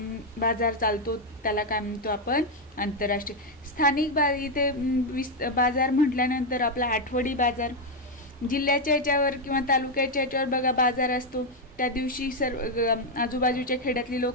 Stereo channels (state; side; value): normal; both; correlation 0.03